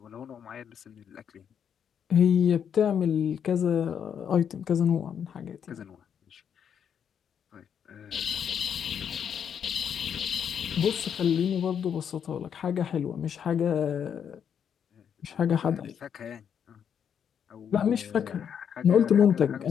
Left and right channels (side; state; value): right; quieter; 8.1 dB